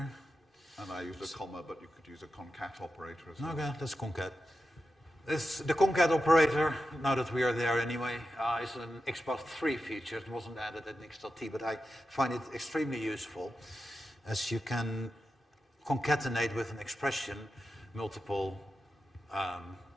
And I used a comma, but you could use a concat operator as well. Okay, let's concat. The concat operator, now that we are there anyway, is an XPath 3 feature. It wasn't added in XSLT, but I find it extremely useful, as you can concatenate with an expression multiple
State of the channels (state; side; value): normal; both; correlation 0.90